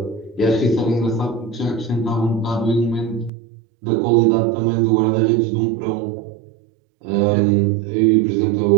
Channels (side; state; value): left; drops out; at 3.3 s